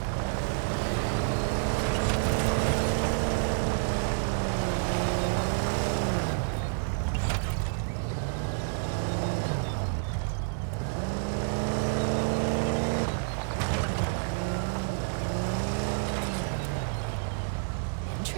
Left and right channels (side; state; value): left; silent; digital silence